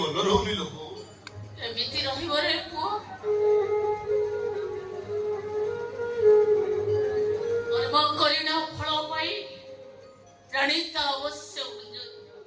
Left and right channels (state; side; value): identical; both; correlation 1.00